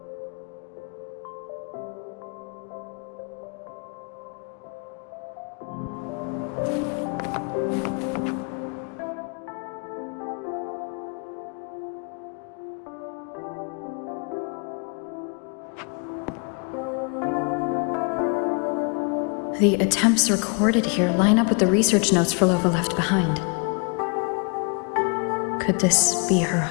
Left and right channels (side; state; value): right; quieter; 35.9 dB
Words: The attempts recorded here line up with the research notes Phrolova left behind. Could this be her